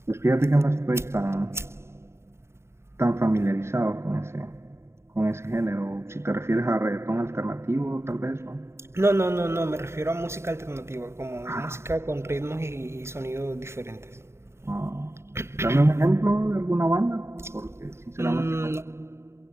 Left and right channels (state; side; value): late; left; 0.13 ms